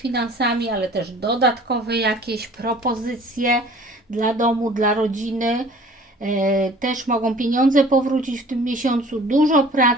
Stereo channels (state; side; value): normal; both; correlation 0.49